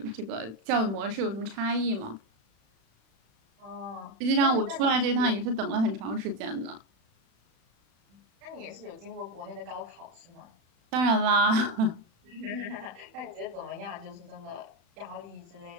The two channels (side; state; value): left; late; 36 ms